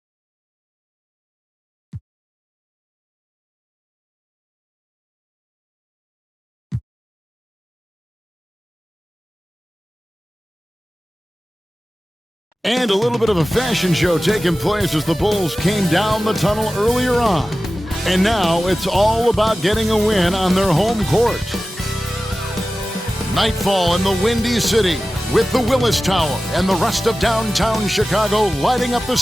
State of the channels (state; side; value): normal; both; correlation 0.95